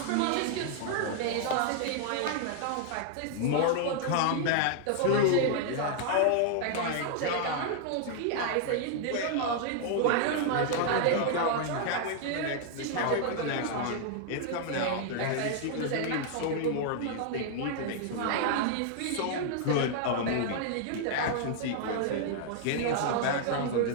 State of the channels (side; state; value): both; different; correlation -0.01